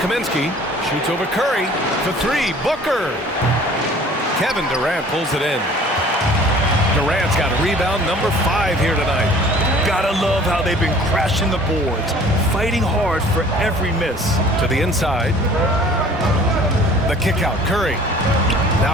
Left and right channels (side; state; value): both; normal; correlation 0.50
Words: Shoots over Curry for 3. Booker. Kevin Durant pulls it in. Durant's got a rebound number 5 here tonight. Gotta love how they've been crashing the boards, fighting hard for every miss. To the inside. The kick out. Curry.